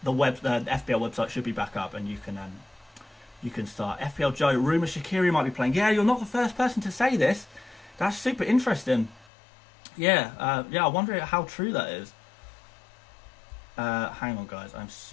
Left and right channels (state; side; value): drops out; right; at 9.2 s